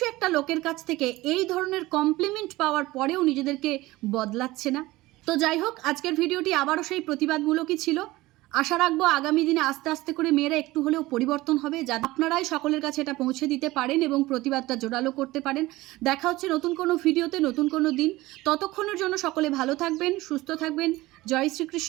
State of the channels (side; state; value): left; quieter; 18.9 dB